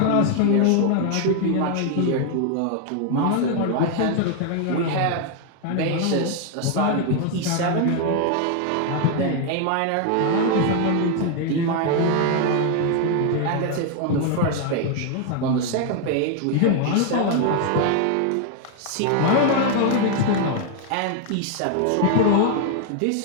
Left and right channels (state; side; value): different; both; correlation 0.01